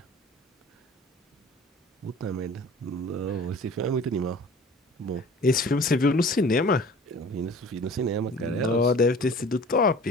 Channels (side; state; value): both; normal; correlation 0.45